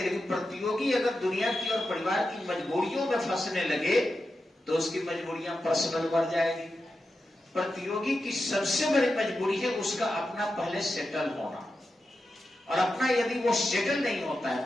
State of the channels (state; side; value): normal; both; correlation 0.90